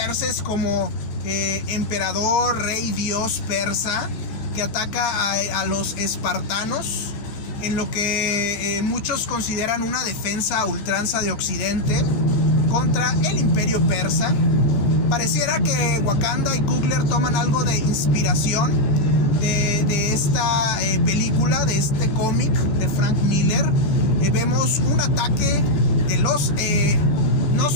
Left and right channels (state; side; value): late; right; 15 ms